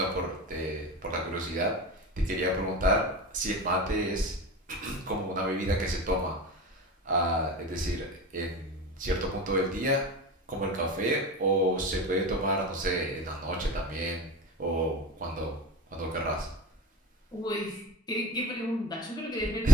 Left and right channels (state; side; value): normal; both; correlation 0.31